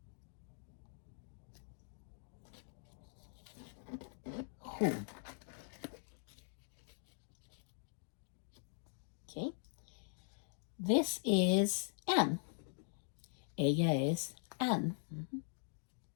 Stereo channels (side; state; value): right; silent; digital silence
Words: who. Okay. This is Anne. Ella es Anne.